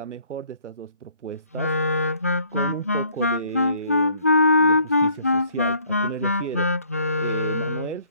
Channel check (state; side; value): inverted; both; correlation -0.61